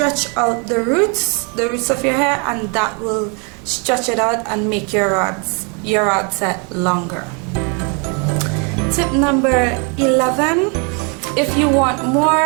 out the roots of your hair, and that will stretch it out and make your rod set longer. Tip number 11, if you want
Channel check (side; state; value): left; quieter; 35.2 dB